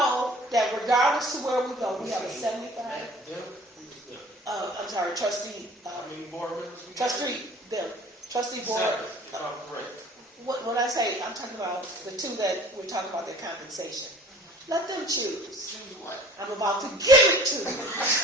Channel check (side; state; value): both; normal; correlation 0.49